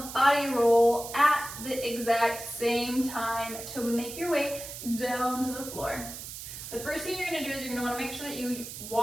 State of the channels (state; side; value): noise; right; hiss, 10 dB below the sound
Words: body roll at the exact same time to make your way down to the floor. The first thing you're going to do is you're going to want to make sure that you